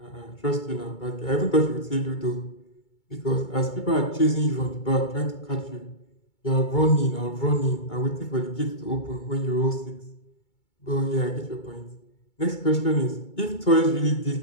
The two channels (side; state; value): right; late; 2.2 ms